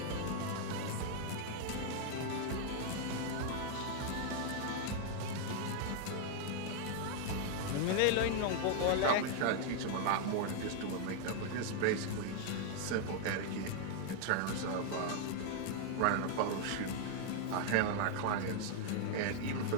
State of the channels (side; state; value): both; different; correlation 0.00